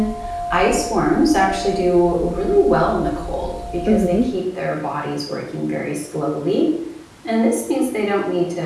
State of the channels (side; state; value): both; identical; correlation 1.00